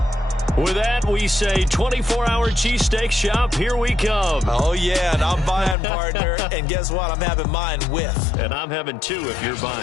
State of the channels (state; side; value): drops out; right; at 5.8 s